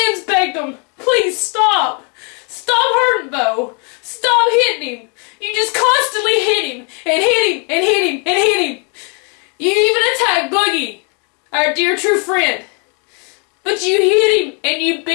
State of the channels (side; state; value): right; quieter; 36.4 dB